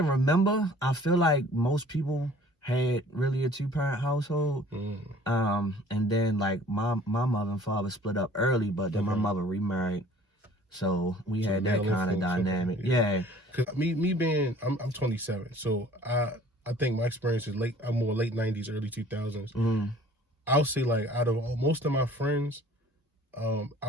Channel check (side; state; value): both; normal; correlation 0.51